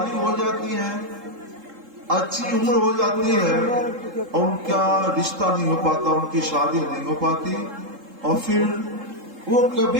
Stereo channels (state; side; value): late; left; 3.7 ms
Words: ہو جاتی ہیں، اچھی عمر ہو جاتی ہے، اور ان کا رشتہ نہیں ہو پاتا، ان کی شادی نہیں ہو پاتی، اور پھر وہ